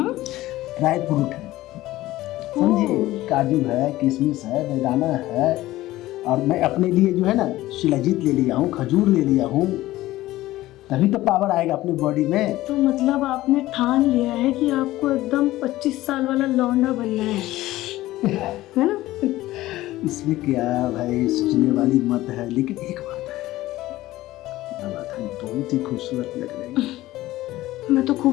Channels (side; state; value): right; quieter; 16.6 dB